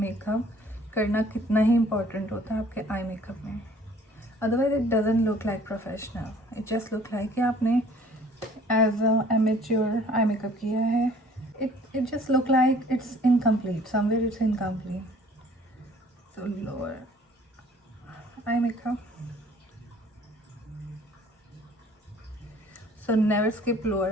करना कितना ही इम्पोर्टेंट होता है आपके आई मेकअप में। Otherwise it doesn't look like professional, it just look like कि आपने as a amateur eye makeup किया है। It just look like it's incomplete, somewhere it's incomplete. So lower eye makeup, so never skip lower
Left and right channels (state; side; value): normal; both; correlation 0.54